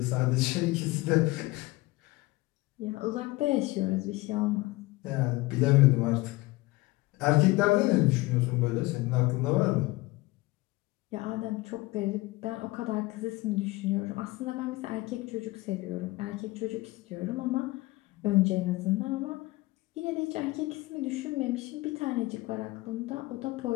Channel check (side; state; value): right; quieter; 20.8 dB